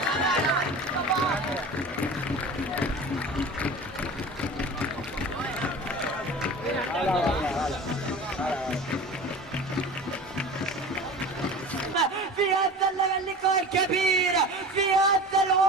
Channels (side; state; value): both; normal; correlation 0.35